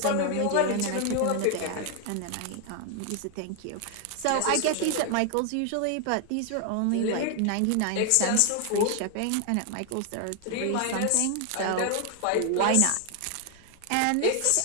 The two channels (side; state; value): both; different; correlation 0.00